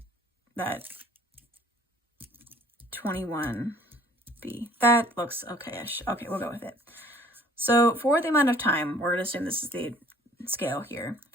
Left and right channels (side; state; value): both; normal; correlation 0.54